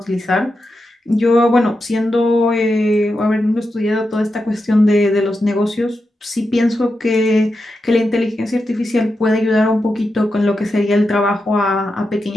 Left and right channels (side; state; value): both; normal; correlation 0.88